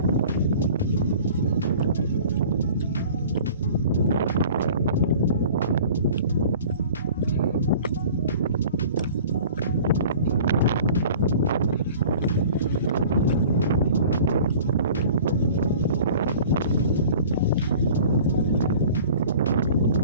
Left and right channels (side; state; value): both; inverted; correlation -0.45